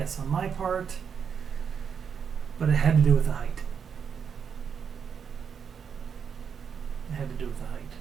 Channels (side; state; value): left; quieter; 6.9 dB